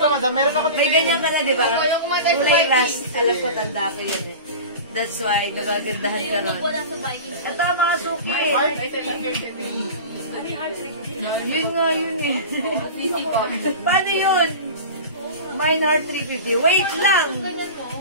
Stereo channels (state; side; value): inverted; both; correlation -0.32